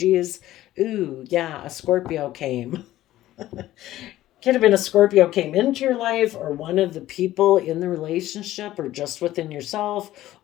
Ooh, yeah, a Scorpio came. Could have been a Scorpio came into your life, or one of the people in the relationship, or just within yourself,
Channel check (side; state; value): right; quieter; 14.7 dB